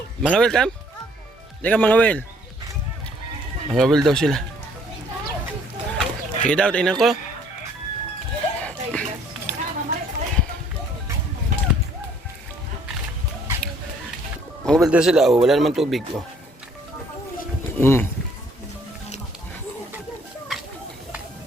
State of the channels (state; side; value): normal; both; correlation 0.61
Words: Mga welcome? Hindi ka mga wel. Mga wel daw sila. Sige daw, tingnan ko. Mga wel daw sila, oh. Wala naman tubig, oh.